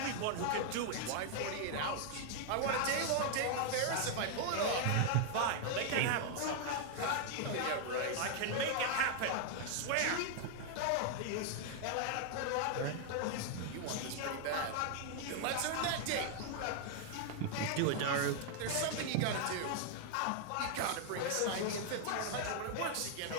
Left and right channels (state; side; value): different; both; correlation 0.00